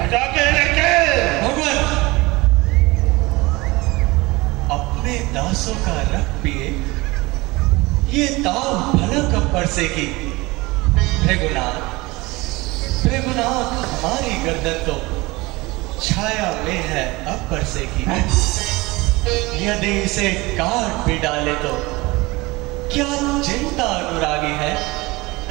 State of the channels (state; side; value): quieter; left; 22.3 dB